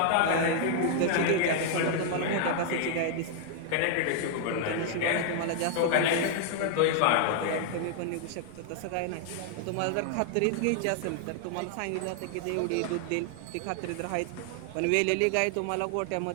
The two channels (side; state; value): both; different; correlation 0.00